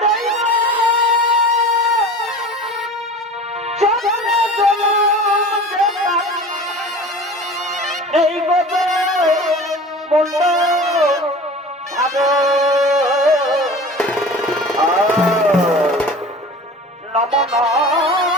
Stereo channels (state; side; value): normal; both; correlation 0.38